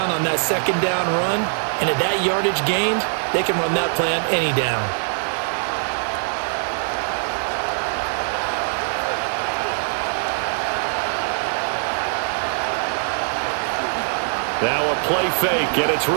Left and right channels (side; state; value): left; silent; digital silence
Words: on that second down run. And at that yardage gained, they can run that play on any down. Now a play fake, and it's